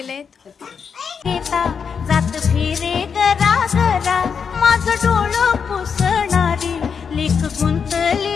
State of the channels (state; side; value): quieter; right; 6.4 dB